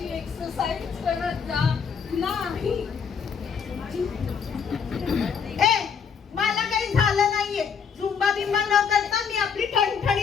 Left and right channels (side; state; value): right; quieter; 6.6 dB